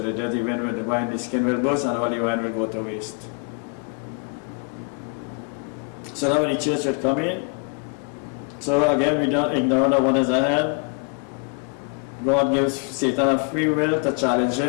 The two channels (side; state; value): right; quieter; 38.0 dB